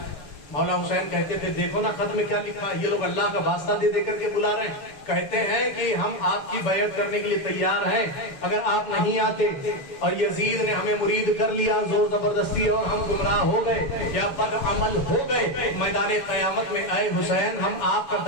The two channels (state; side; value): late; right; 7.1 ms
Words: मौला हुसैन कहते थे, देखो ना खत में क्या लिखा, ये लोग अल्लाह का वास्ता दे देकर के बुला रहे हैं, कहते हैं कि हम आपकी बैत करने के लिए तैयार हैं, अगर आप नहीं आते। और यजीद ने हमें मुरीद कर लिया जोर जबरदस्ती, और हम गुमराह हो गए या बदअमल हो गए। मैदान कयामत में आए हुसैन, हम आपका